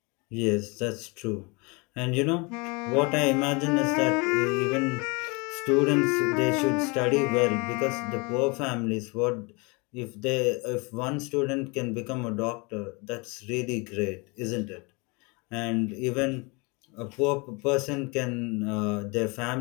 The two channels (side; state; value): right; quieter; 28.9 dB